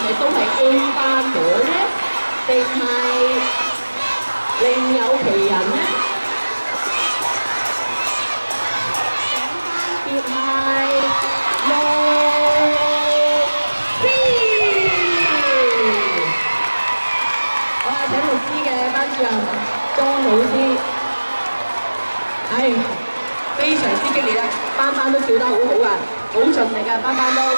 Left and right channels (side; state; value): both; inverted; correlation -1.00